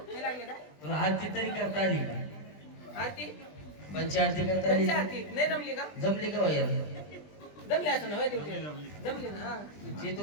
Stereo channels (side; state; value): right; late; 20 ms